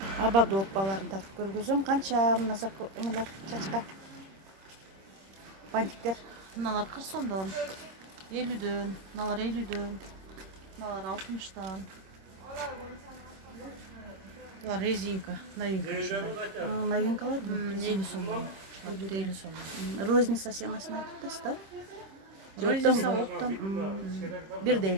ободок тартып көргөзөм. Канча мына эмелер чачка бантиктер? Мыналар 40 сомдон, 50дөн, мыналар 50дөн, мыналар 60тан. Булар резинка, новинка. Новинкалар бу. 50 сомдон. 50 сомдон. Розница сыймасын айтып атасыз да? Розница оптом. Бирдей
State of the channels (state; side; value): late; left; 26 ms